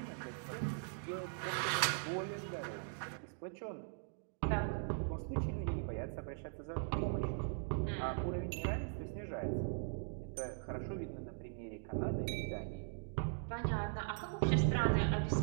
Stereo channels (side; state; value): left; silent; digital silence